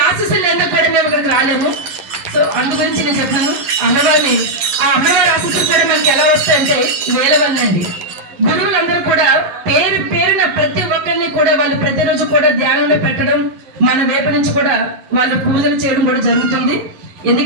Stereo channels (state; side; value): late; left; 11 ms